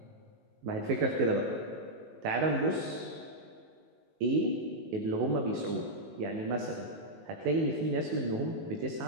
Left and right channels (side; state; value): left; late; 19 ms